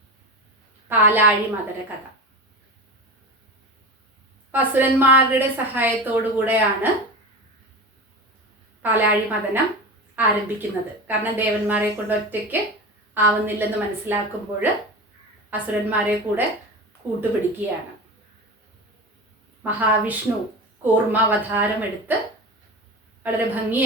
പാലാഴി മദന കഥ. അസുരന്മാരുടെ സഹായത്തോടു കൂടെയാണ് പാലാഴി മദനം ആരംഭിക്കുന്നത്. കാരണം ദേവന്മാരെ കൊണ്ട് ഒറ്റയ്ക്ക് ആവുന്നില്ലെന്ന് മനസ്സിലാക്കുമ്പോൾ അസുരന്മാരെ കൂടെ കൂട്ടുപിടിക്കുകയാണ്. മഹാവിഷ്ണു കൂർമാവതാരമെടുത്ത് വളരെ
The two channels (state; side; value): normal; both; correlation 0.27